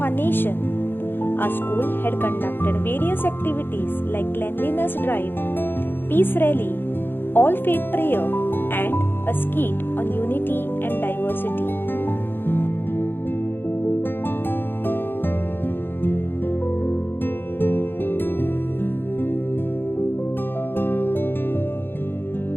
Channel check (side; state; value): right; late; 0.10 ms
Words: our nation, our school had conducted various activities like cleanliness drive, peace rally, all faith prayer, and a skit on unity and diversity.